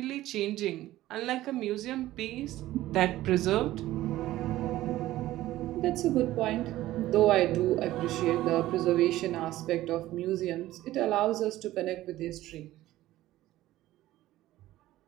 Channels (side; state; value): left; quieter; 15.4 dB